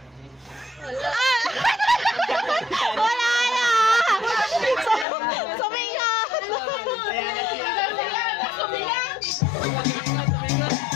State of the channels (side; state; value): right; drops out; at 5.1 s